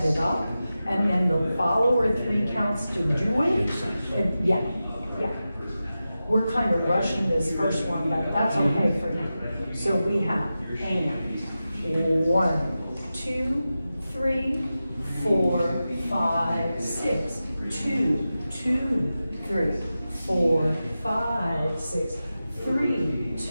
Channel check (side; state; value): both; inverted; correlation -0.93